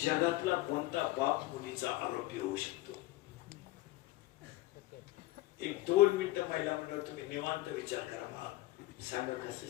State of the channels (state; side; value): quieter; right; 17.4 dB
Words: कोणता बाप मुलीचा आरोपी होऊ शकतो? 1-2 मिनिटं महिला मंडळ तुम्ही निवांत विचार करा. मला सांगा कसं